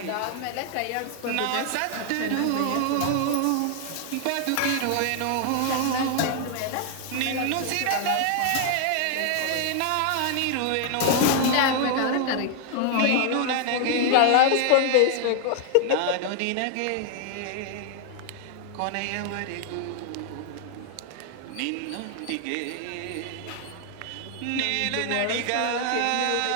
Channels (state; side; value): different; both; correlation 0.00